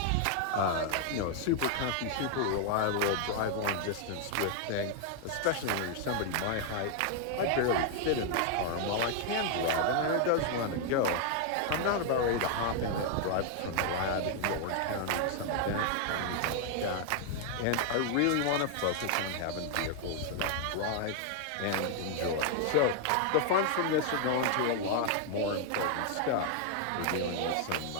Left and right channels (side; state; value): both; different; correlation 0.00